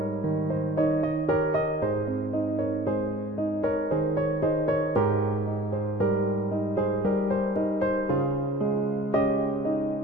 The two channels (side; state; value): both; normal; correlation 0.46